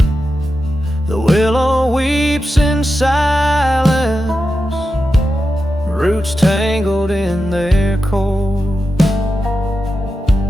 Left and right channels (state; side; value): normal; both; correlation 0.90